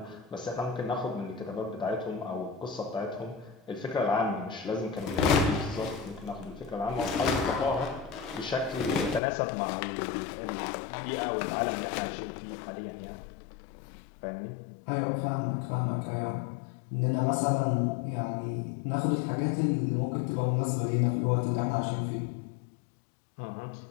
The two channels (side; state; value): right; drops out; at 9.2 s